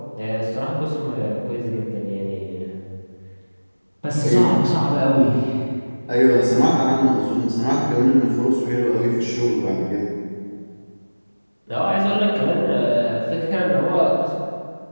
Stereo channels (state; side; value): inverted; both; correlation -1.00